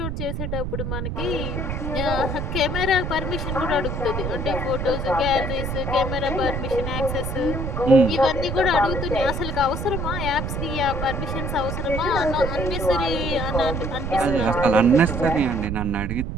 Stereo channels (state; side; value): noise; right; rumble, 3 dB below the sound